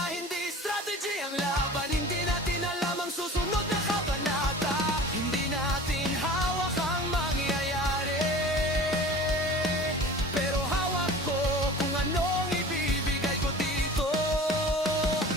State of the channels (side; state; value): both; normal; correlation 0.40